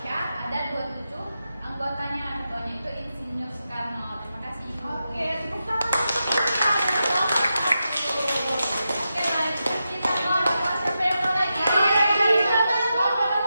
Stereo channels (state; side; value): inverted; both; correlation -0.88